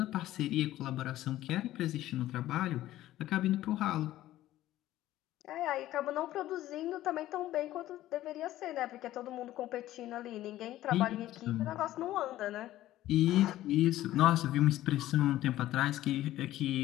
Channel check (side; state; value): right; quieter; 14.5 dB